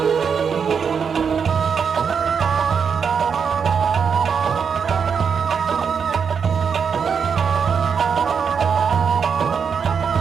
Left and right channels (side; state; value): left; quieter; 6.5 dB